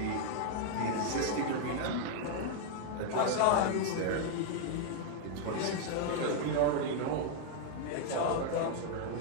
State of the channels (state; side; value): different; both; correlation 0.00